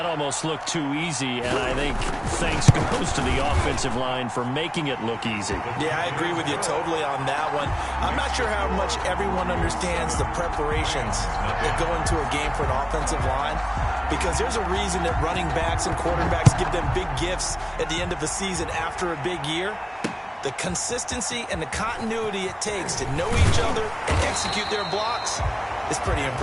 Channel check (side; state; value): both; identical; correlation 1.00